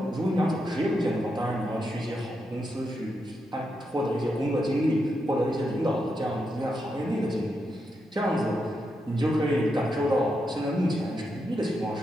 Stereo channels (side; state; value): both; normal; correlation 0.84